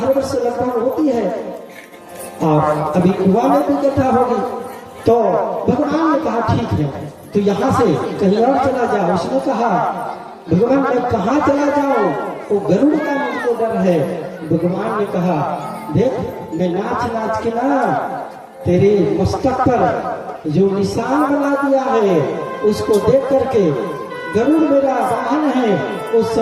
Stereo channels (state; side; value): identical; both; correlation 1.00